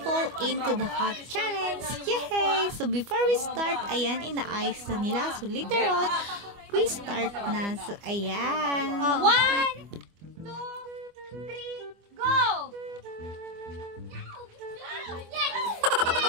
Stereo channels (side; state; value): left; late; 25 ms